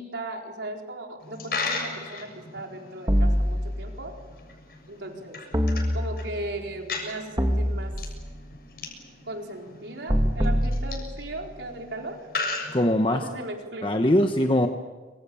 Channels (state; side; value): normal; both; correlation 0.73